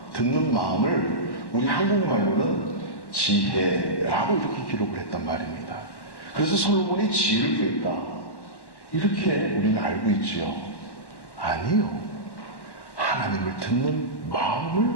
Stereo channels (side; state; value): right; late; 1.1 ms